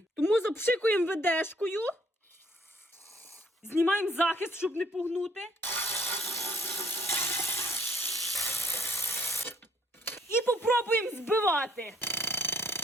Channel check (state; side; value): normal; both; correlation 0.64